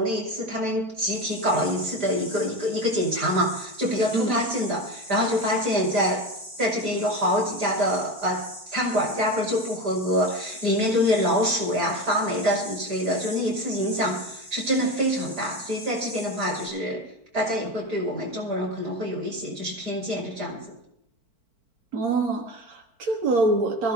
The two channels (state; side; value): late; left; 4.5 ms